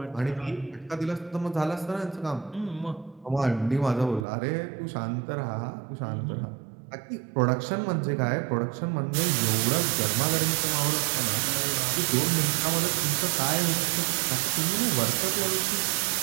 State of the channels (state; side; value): drops out; left; at 4.2 s